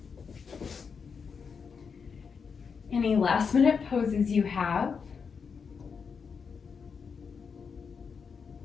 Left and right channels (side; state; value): right; quieter; 5.9 dB